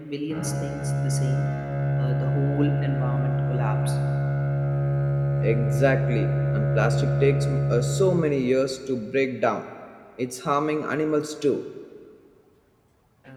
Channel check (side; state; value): both; identical; correlation 1.00